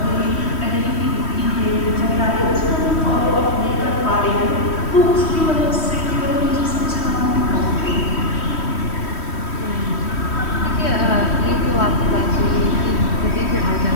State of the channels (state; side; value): late; right; 3.1 ms